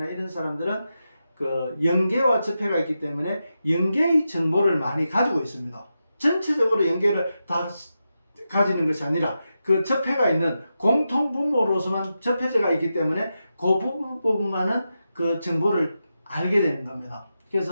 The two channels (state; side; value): inverted; both; correlation -0.89